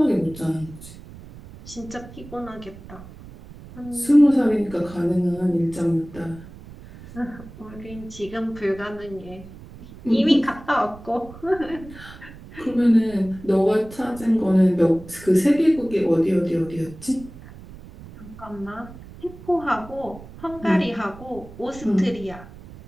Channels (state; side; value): noise; right; rumble, 17 dB below the sound